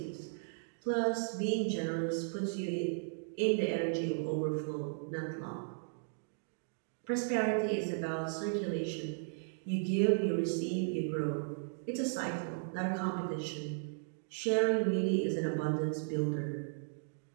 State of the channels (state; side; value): silent; left; digital silence